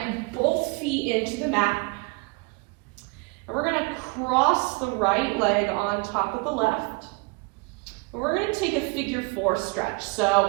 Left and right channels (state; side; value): quieter; left; 29.3 dB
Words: both feet into the mat. And we're going to cross the right leg on top of the left. And we're going to take a figure 4 stretch.